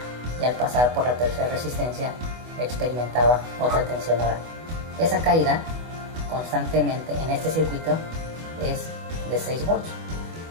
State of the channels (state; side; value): late; left; 24 ms